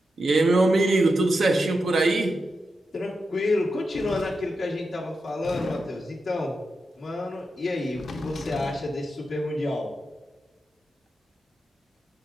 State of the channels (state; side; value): normal; both; correlation 0.88